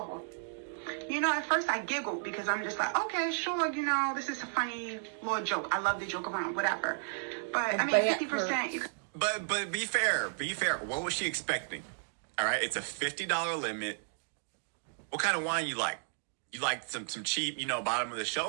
You know, at first I giggled because I'm just like, okay, sure, you know, this is a funny little joke. I love to joke around, whatever. But I mean, 50%. But be fair. What was she expecting? All right, it's a $50 limit. What kind of wine you like? You like some cheap, you know, bottom of the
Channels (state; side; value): silent; left; digital silence